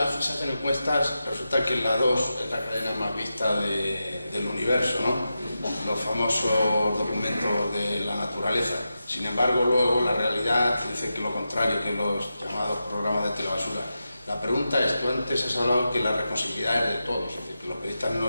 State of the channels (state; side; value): inverted; both; correlation -0.90